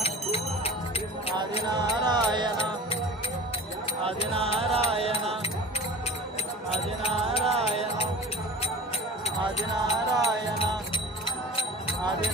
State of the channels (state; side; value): normal; both; correlation 0.38